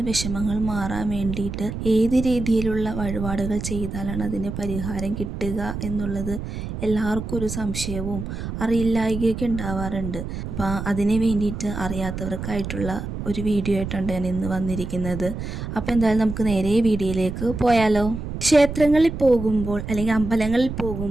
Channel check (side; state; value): right; noise; rumble, 6 dB below the sound